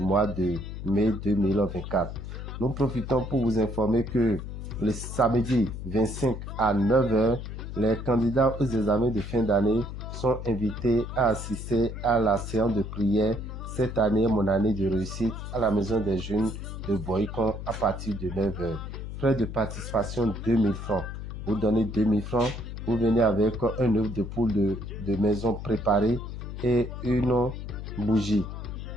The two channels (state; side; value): noise; left; hum, 8 dB below the sound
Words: de mai 2024. Nous profitons pour vous informer que le samedi 25 à 9h, les candidats aux examens de fin d'année sont invités à assister à la séance de prière cette année, mon année de réussite, à la maison des jeunes de Boycon à partir de 9h. Frais de participation 2000 francs. Vous donnez 2000 francs, vous venez avec un œuf de poule de maison préparé et une bougie